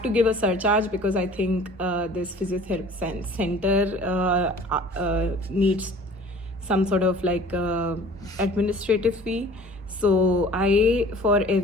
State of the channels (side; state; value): both; normal; correlation 0.47